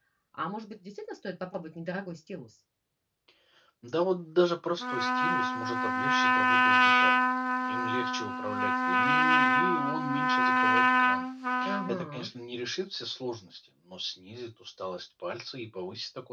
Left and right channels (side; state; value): both; identical; correlation 1.00